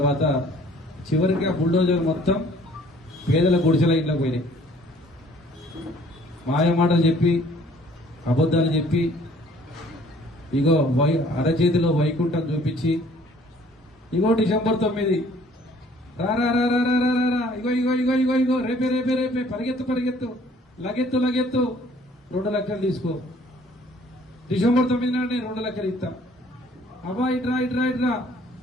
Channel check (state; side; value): normal; both; correlation 0.57